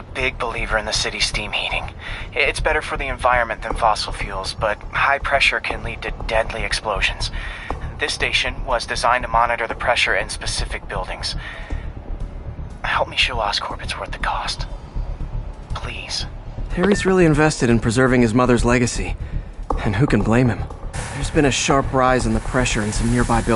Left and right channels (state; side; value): identical; both; correlation 1.00